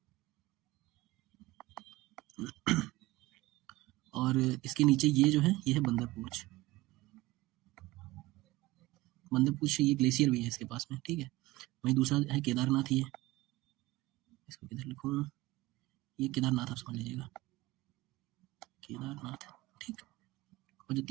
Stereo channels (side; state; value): left; quieter; 19.1 dB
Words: और इसके नीचे ये जो है ये है बंदरपूछ। बंदरपूछ ये ग्लेशियर भी है इसके पास में, ठीक है। वहीं दूसरा है केदारनाथ, ये इसको किधर लिखूं, ये केदारनाथ आप समझ लीजिएगा, केदारनाथ, ठीक। और जो